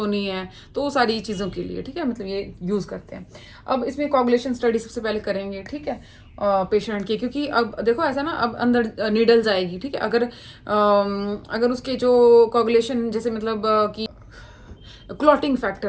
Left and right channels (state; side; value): identical; both; correlation 1.00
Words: नहीं है, तो वो सारी चीज़ों के लिए। ठीक है, मतलब ये यूज़ करते हैं। अब इसमें कोगुलेशन स्टडी सबसे पहले करेंगे। ठीक है, पेशेंट की, क्योंकि अब देखो ऐसा ना, अब अंदर नीडल जाएगी। ठीक है, अगर उसके जो कोगुलेशन जैसे मतलब कि क्लॉटिंग